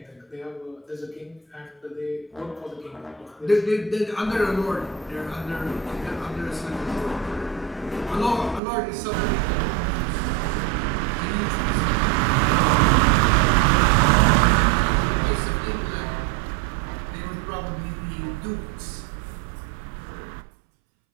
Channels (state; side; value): drops out; left; at 8.6 s